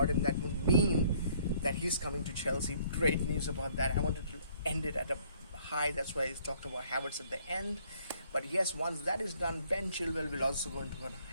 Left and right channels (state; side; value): inverted; both; correlation -0.62